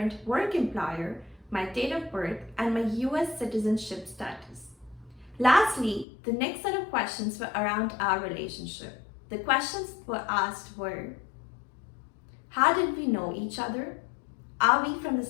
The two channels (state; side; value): drops out; right; at 6.1 s